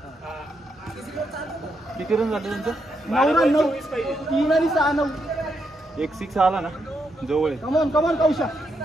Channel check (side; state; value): both; normal; correlation 0.80